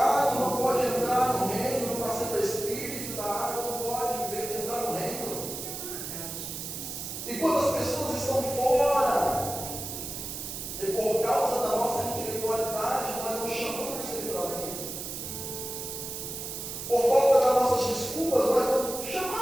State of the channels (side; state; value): right; noise; hiss, 7 dB below the sound